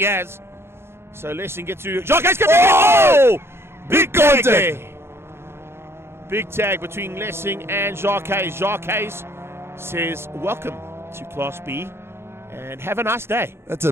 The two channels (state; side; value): late; left; 0.12 ms